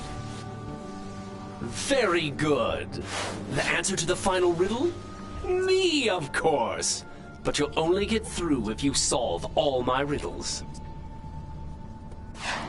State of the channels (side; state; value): both; identical; correlation 1.00